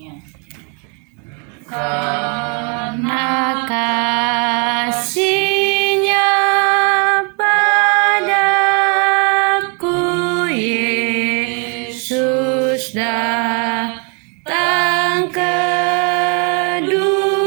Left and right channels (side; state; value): left; quieter; 36.5 dB